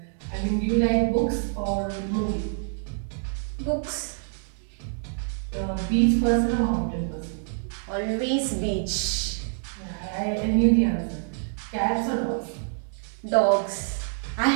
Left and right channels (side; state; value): left; silent; digital silence